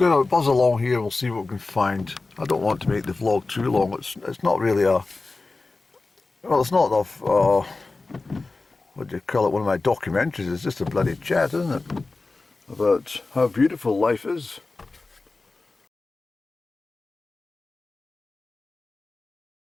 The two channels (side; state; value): right; quieter; 3.6 dB